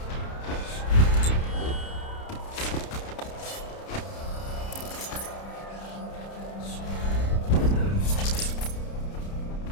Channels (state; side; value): late; right; 30 ms